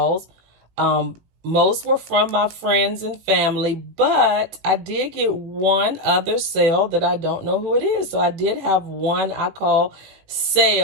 Most were from my friends and family, but I did get one other sale that I don't know who it is. So I did have one I call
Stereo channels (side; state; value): left; late; 18 ms